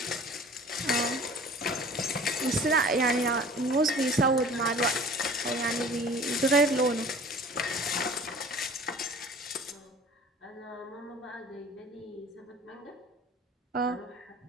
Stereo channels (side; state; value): both; normal; correlation 0.45